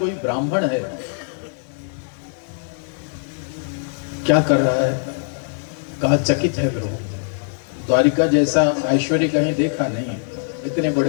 ब्राह्मण है। क्या कर रहा है? कहा चकित है प्रभु, द्वारिका जैसा ऐश्वर्य कहीं देखा नहीं। इतने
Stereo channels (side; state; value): right; silent; 64 dB below the other